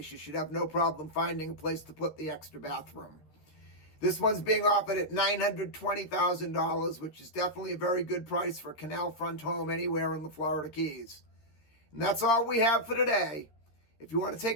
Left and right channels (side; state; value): right; late; 13 ms